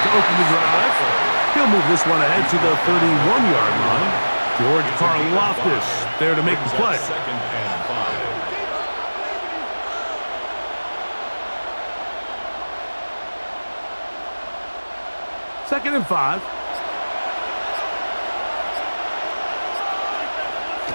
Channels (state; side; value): inverted; both; correlation -1.00